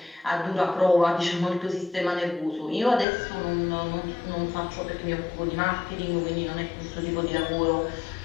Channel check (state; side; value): drops out; right; at 3.1 s